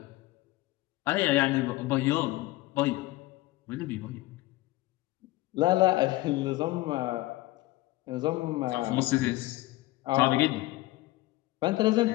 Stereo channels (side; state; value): right; quieter; 18.6 dB